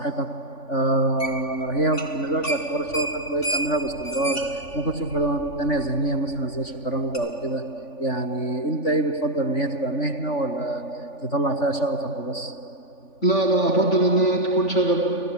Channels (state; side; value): late; right; 3.5 ms